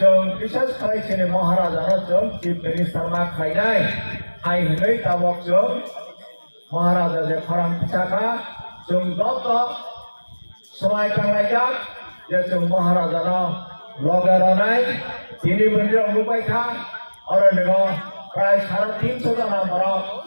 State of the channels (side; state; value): both; inverted; correlation -1.00